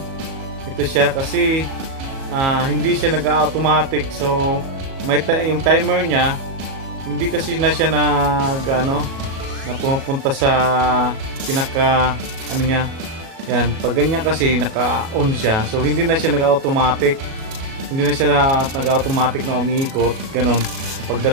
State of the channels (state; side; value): late; left; 37 ms